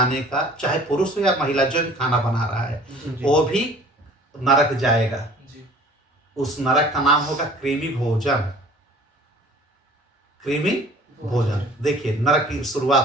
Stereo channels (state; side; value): normal; both; correlation 0.48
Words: का, चाहे पुरुष हो या महिला, जो भी खाना बना रहा है जी वो भी नरक जाएगा। जी उस नरक का नाम होगा कृमि भोजन। कृमि भोजन। देखिए नरक की